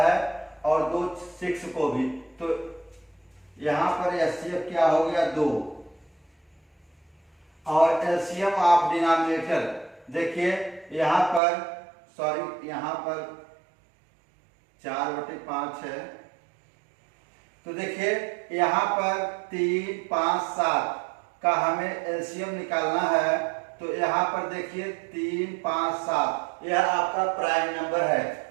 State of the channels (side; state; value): left; drops out; at 11.4 s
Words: और 2 6 को भी, तो यहाँ पर एचसीएफ क्या हो गया 2। और एलसीएम ऑफ डिनोमिनेटर देखिए यहाँ पर 4/5 है। तो देखिए यहाँ पर 3 5 7 का हमें एलसीएम निकालना है। तो यहाँ पर देखिए 3 5 7 यह आपका प्राइम नंबर है।